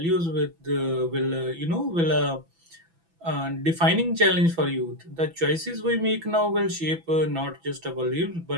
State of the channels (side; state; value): left; late; 6.0 ms